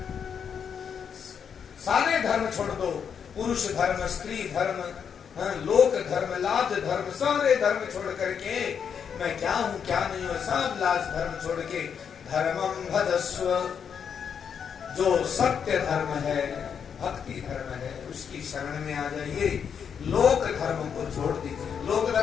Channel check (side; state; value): right; quieter; 7.3 dB